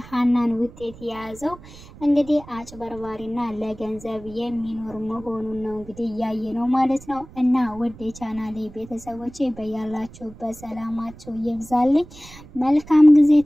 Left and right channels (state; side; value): noise; right; rumble, 19 dB below the sound